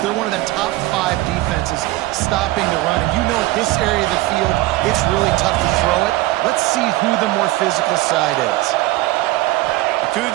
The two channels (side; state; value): left; quieter; 18.3 dB